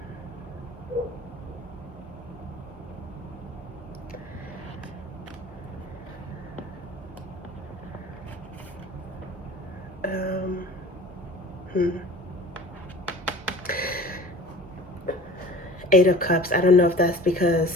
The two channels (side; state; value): both; normal; correlation 0.42